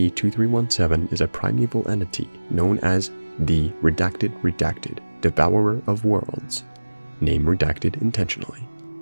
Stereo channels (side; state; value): both; inverted; correlation -1.00